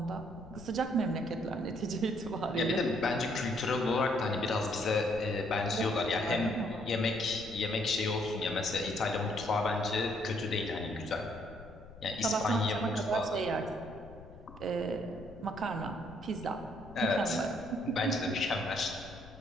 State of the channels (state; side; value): noise; left; rumble, 18 dB below the sound